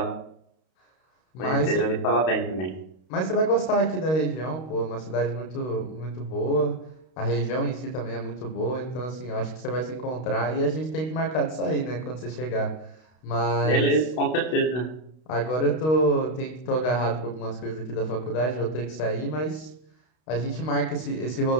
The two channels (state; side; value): late; right; 32 ms